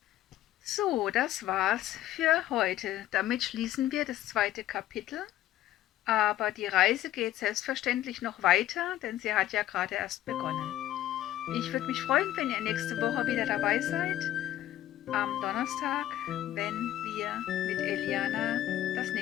So, das war's für heute. Damit schließen wir das 2. Kapitel. Aber die Reise geht selbstverständlich noch weiter, denn sie hat ja gerade erst begonnen. Ich würde mich freuen, wenn ihr nächste Woche wieder dabei seid, am Donnerstag, wenn wir mit Eliana das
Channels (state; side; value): quieter; right; 13.4 dB